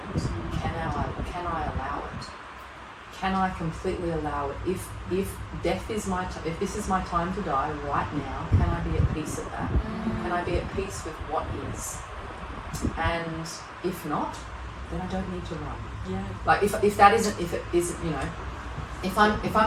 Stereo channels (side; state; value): both; identical; correlation 1.00